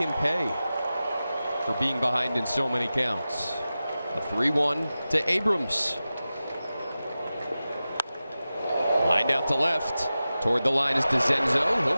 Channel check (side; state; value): both; inverted; correlation -0.95